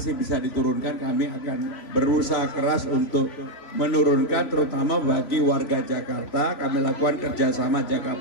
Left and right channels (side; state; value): right; late; 3.6 ms